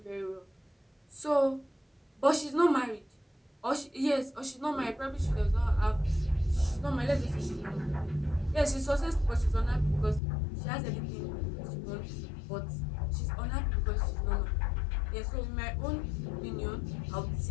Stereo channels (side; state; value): right; drops out; at 10.2 s